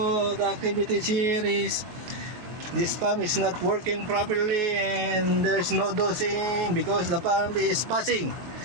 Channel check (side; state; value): left; late; 24 ms